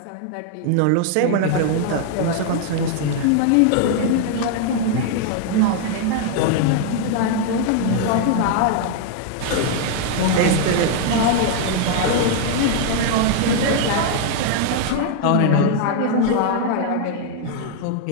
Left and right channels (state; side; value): different; both; correlation 0.00